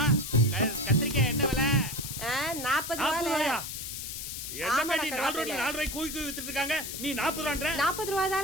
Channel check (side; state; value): left; noise; hiss, 7 dB below the sound